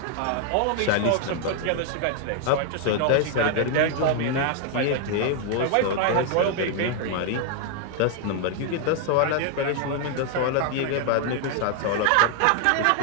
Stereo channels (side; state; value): both; different; correlation 0.00